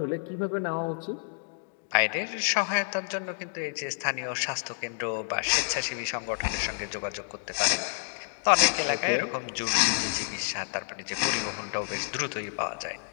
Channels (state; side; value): silent; right; digital silence